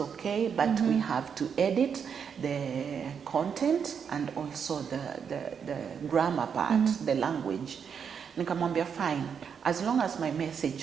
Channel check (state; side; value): quieter; left; 7.0 dB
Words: but we have to edit the content and also the grammar part, the language. Nikamwambia fine, as long as my